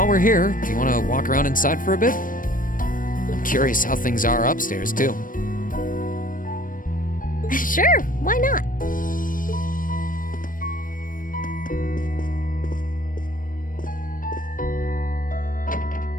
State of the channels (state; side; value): late; right; 0.40 ms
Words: we're here, do you want to walk around inside for a bit? I'm curious how things are upstairs, too. Sure, why not?